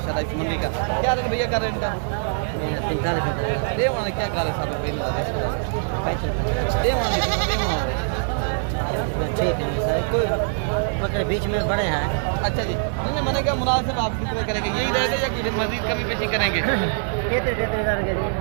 इस मंडी का। क्या रेट भैया कर रहे हैं इनका? 45 दे वाले क्या कर रहे साहब ठीक है सर। कोई बकरे बीच में बड़े हैं। अच्छा जी, मैंने क्या मुनासिब आप कितने करेंगे? यही रेट है या कुछ मजीद कभी पेशी करेंगे?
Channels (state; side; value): silent; left; digital silence